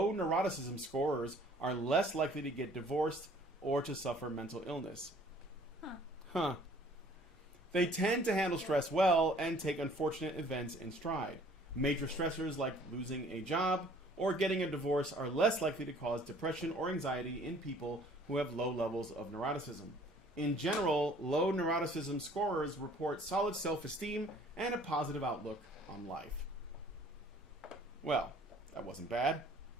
scorers are less likely to get divorced or to suffer mental illness. Huh. They tend to handle stress well and take unfortunate events in stride. Major stressors like losing a job or getting a divorce are less likely to cause depression or anxiety in people who have low levels of neuroticism. In general, low neuroticism scorers report solid self-esteem and a positive outlook on life. Well, that wasn't bad.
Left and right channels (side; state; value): both; normal; correlation 0.55